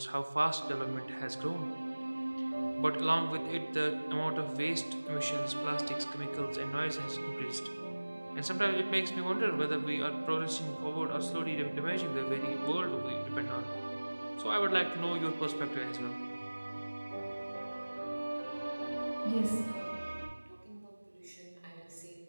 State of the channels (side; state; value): both; inverted; correlation -1.00